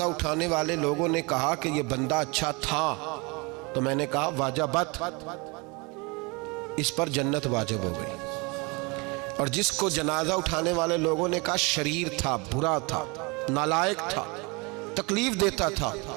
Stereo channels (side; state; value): left; quieter; 28.2 dB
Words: اٹھانے والے لوگوں نے کہا کہ یہ بندہ اچھا تھا، تو میں نے کہا واجبت، اس پر جنت واجب ہو گئی، اور جس کو جنازہ اٹھانے والے لوگوں نے کہا شریر تھا، برا تھا، نالائق تھا، تکلیف دیتا تھا،